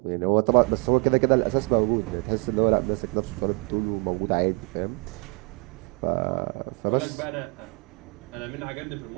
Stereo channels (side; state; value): left; quieter; 32.1 dB